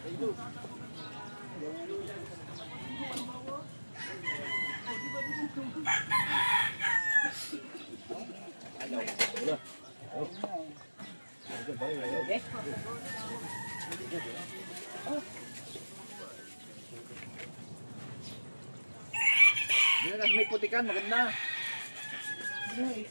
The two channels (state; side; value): inverted; both; correlation -1.00